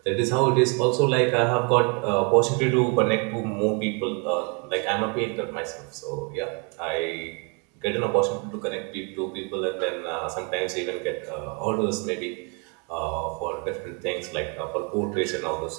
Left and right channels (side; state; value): left; quieter; 34.8 dB